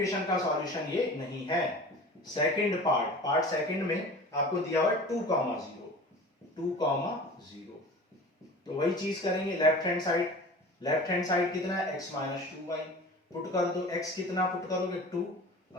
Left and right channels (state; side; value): normal; both; correlation 0.39